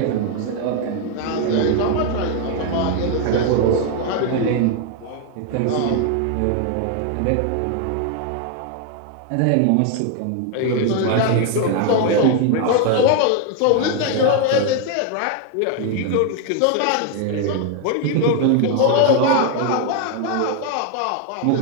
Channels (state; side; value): different; both; correlation 0.00